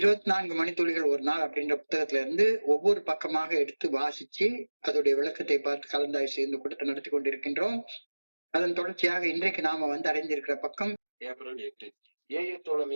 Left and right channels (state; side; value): inverted; both; correlation -1.00